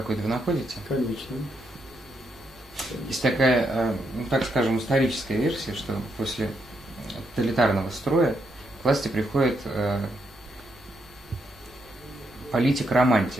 вы находите? Конечно. Есть такая, ну, так скажем, историческая версия, что после тоталитарного строя к власти приходит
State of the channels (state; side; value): normal; both; correlation 0.79